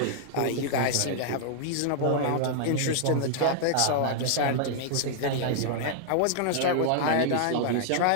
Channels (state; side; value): different; both; correlation -0.01